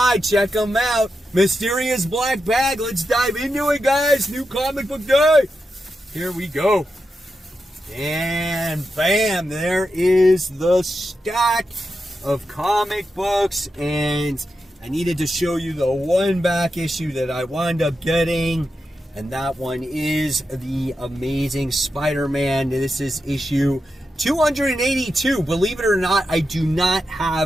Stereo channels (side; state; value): both; normal; correlation 0.88